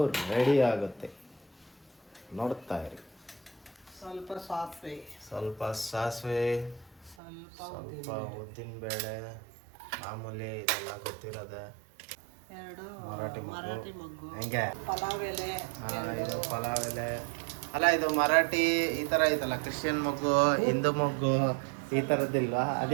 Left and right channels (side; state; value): left; drops out; at 7.2 s